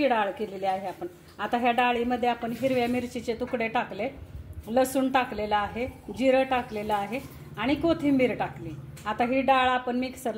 डाळ केलेली आहे आपण। आता ह्या डाळीमध्ये आपण हिरव्या मिरचीचे तुकडे टाकले, लसूण टाकलेला आहे, जिरं टाकलेलं आहे आणि कोथिंबीर टाकली। आता ही डाळ आपण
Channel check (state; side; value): identical; both; correlation 1.00